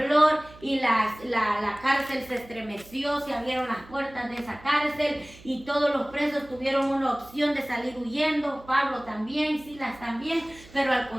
y la cárcel se estremeció, se abrieron las puertas de esa cárcel y todos los presos tuvieron una opción de salir huyendo, Pablo también, Silas también, pero al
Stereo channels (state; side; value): noise; right; hum, 22 dB below the sound